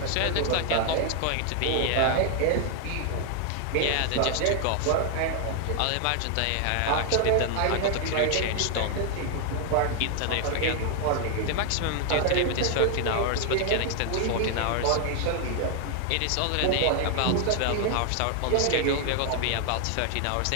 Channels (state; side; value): different; both; correlation 0.00